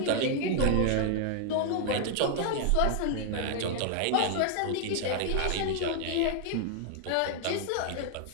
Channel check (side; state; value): both; different; correlation 0.00